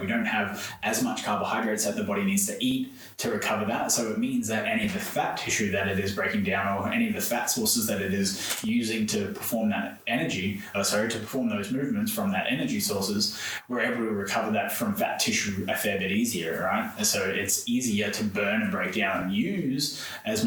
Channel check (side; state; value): both; identical; correlation 1.00